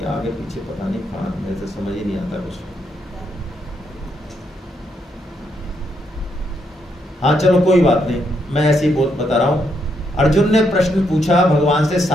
आगे पीछे पता नहीं कहाँ, मेरे से समझ ही नहीं आता कुछ। हाँ चलो कोई बात नहीं, मैं ऐसे ही बता रहा हूं। अर्जुन ने प्रश्न पूछा भगवान से,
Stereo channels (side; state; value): both; normal; correlation 0.77